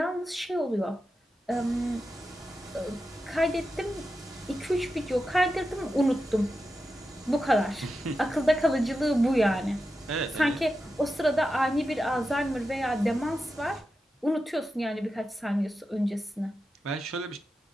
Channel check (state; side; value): normal; both; correlation 0.90